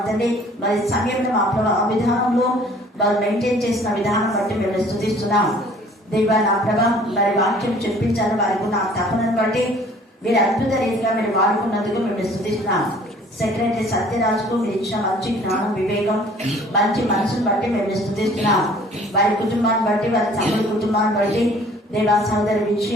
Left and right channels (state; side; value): normal; both; correlation 0.53